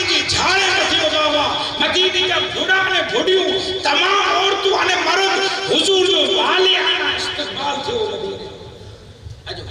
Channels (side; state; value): both; identical; correlation 1.00